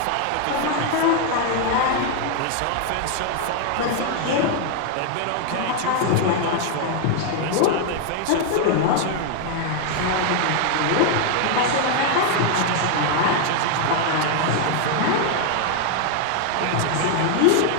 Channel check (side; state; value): both; different; correlation 0.00